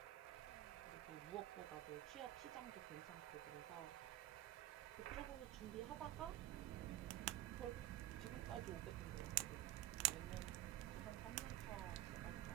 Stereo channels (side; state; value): left; quieter; 14.8 dB